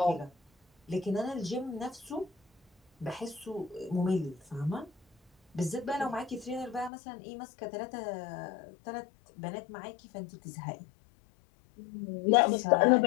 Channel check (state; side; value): drops out; right; at 6.9 s